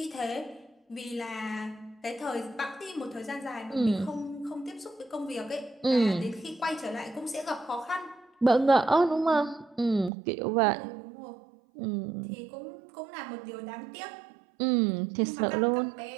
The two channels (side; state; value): left; drops out; at 10.1 s